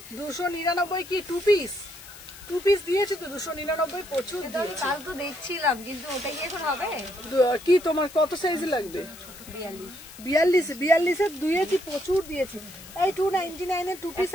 299 কি 2 পিস? 2 পিস দিয়েছি তো, 299 প্রচুর দিয়েছি। কাল তো দেখছিলাম, কিন্তু ওটা কি এখন হবে? কি তোমার কত সাইজ লাগবে? 42 দিয়েছি, প্রচুর দিয়েছি। এই 299-এর 2 পিস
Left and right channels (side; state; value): left; noise; hiss, 17 dB below the sound